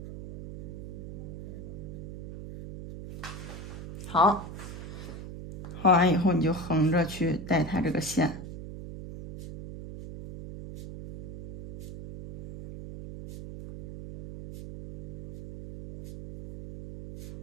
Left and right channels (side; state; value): right; noise; hum, 9 dB below the sound